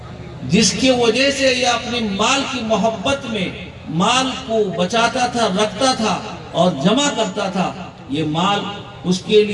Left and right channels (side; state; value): both; identical; correlation 1.00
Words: جس کی وجہ سے یہ اپنی مال کی محبت میں مال کو بچاتا تھا, رکھتا تھا اور جمع کرتا تھا, یہ مال اس کے